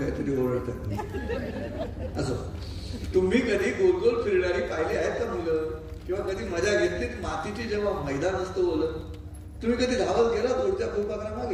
ओरडतात. असं तुम्ही कधी गोल गोल फिरणारी पाहिली आहेत का मुलं, किंवा कधी मजा घेतलीत मातीची जेव्हा मैदान असतं बोलत, तुम्ही कधी धावत गेला दूरच्या फुलपाखरामागे,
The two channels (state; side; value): identical; both; correlation 1.00